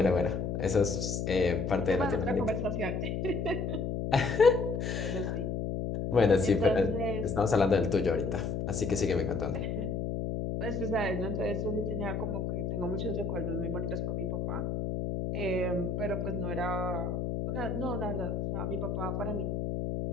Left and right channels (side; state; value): left; noise; hum, 1 dB below the sound